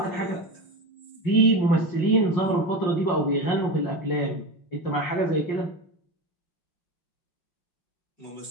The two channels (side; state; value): right; late; 5.2 ms